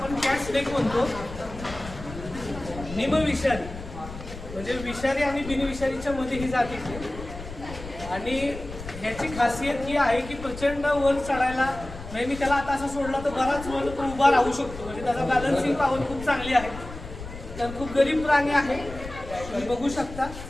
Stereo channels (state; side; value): noise; left; rumble, 12 dB below the sound